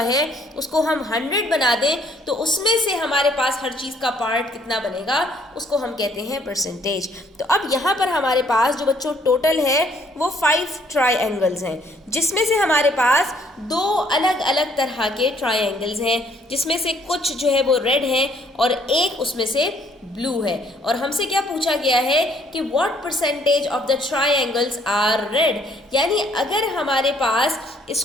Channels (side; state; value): both; normal; correlation 0.64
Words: है उसको हम 100 बना दें तो उसमें से हमारे पास हर चीज़ का पार्ट कितना बनेगा, उसको हम कहते हैं परसेंटेज। तो अब यहाँ पर हमारे पास जो बच्चों टोटल है वो 5 ट्रायंगल्स हैं, जिसमें से हमारे पास दो अलग अलग तरह के ट्रायंगल्स हैं, जिसमें से कुछ जो है वो रेड हैं और एक उसमें से ब्लू है। और हमसे क्या पूछा गया है कि what percentage of the triangles are red, यानी अगर हमारे पास